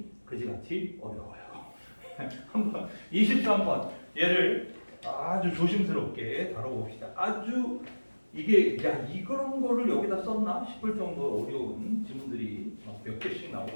그지같이 어려워요. 한번 23번 얘를 아주 조심스럽게 다뤄봅시다. 아주 이게 야 이런 거를 여기다 썼나 싶을 정도로 어려운 질문들이 몇 개씩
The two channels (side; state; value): both; inverted; correlation -1.00